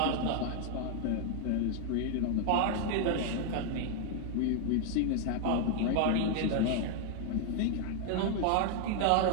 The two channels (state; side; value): different; both; correlation 0.00